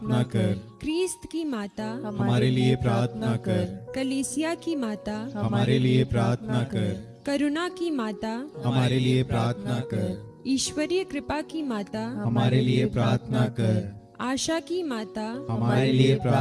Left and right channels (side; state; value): both; identical; correlation 1.00